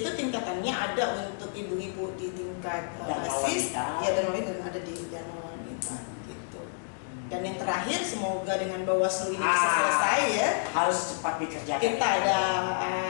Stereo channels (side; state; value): right; silent; digital silence